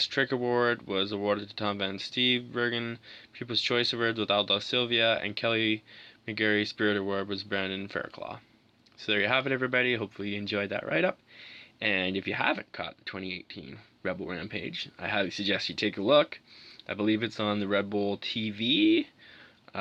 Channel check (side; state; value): both; identical; correlation 1.00